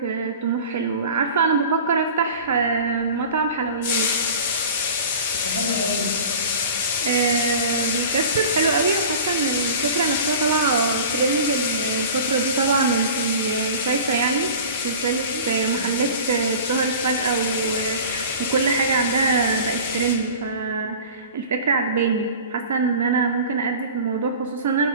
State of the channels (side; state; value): both; inverted; correlation -0.39